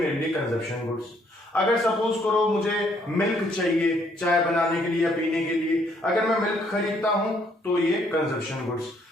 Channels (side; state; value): both; normal; correlation 0.68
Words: लिए कंजप्शन गुड्स। अगर सपोज करो मुझे मिल्क चाहिए चाय बनाने के लिए या पीने के लिए, अगर मैं मिल्क खरीदता हूं तो ये कंजप्शन गुड्स।